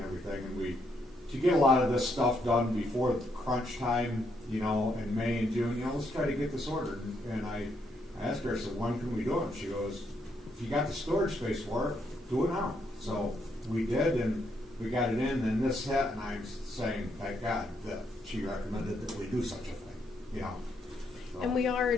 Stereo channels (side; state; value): both; normal; correlation 0.76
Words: everything, and to get a lot of this stuff done before crunch time, in May and June, let's try to get this ordered. And I asked her, I said, when can we do it? She goes, if you got the storage space for it, do it now. So we did, and we got it in, and this hit, and I'm saying, thank God that she recommended that we do such a thing, So. And